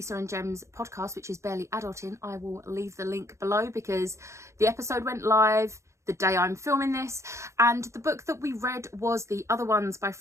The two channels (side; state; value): left; late; 0.14 ms